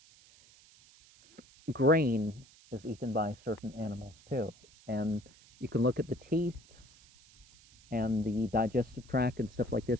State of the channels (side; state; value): right; noise; hiss, 26 dB below the sound